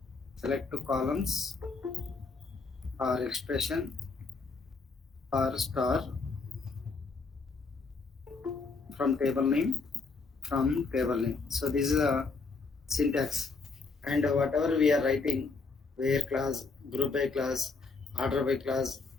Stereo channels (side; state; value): right; quieter; 4.2 dB